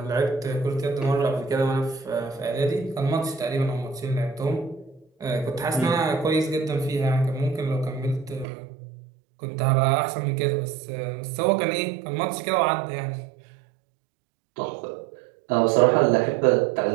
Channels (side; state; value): left; drops out; at 8.5 s